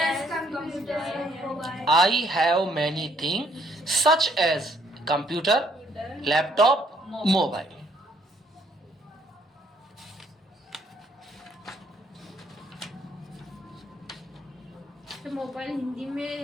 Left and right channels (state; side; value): normal; both; correlation 0.67